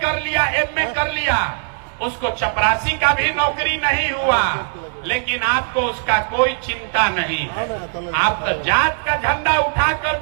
कर लिया, एमए कर लिया, उसको चपरासी का भी नौकरी नहीं हुआ, लेकिन आपको उसका कोई चिंता नहीं है। आप तो जात का झंडा उठाकर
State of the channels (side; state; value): left; silent; 66 dB below the other